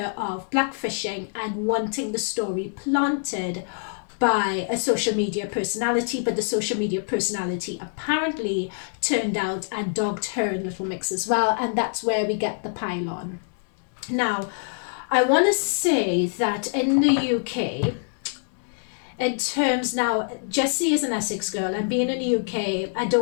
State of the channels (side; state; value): right; silent; 62 dB below the other